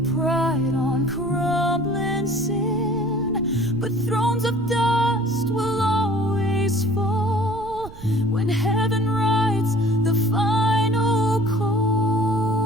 on crumbling sin. But thrones of dust will always fall when heaven writes the final call.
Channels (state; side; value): noise; right; rumble, 17 dB below the sound